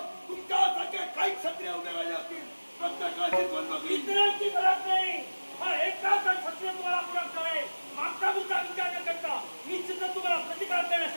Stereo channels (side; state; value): both; inverted; correlation -1.00